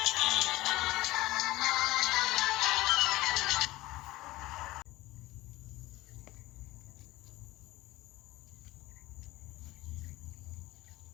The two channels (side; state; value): right; quieter; 18.5 dB